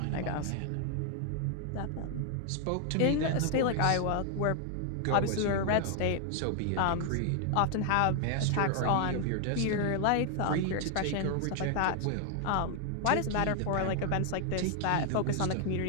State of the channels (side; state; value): both; different; correlation 0.00